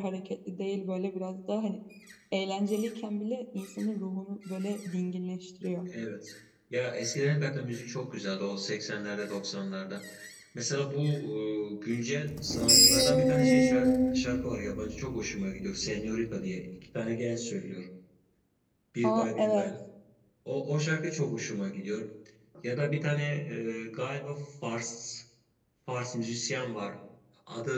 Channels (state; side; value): identical; both; correlation 1.00